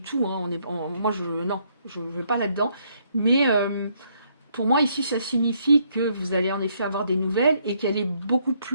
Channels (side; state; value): both; inverted; correlation -0.71